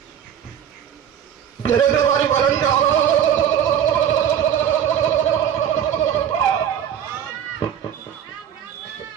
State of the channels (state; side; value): quieter; left; 9.4 dB